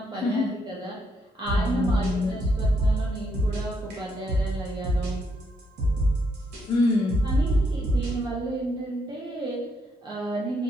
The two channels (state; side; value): normal; both; correlation 0.76